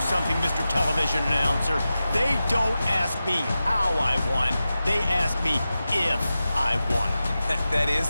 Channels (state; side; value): inverted; both; correlation -0.93